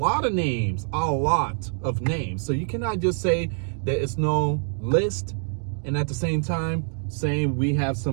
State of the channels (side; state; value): left; silent; digital silence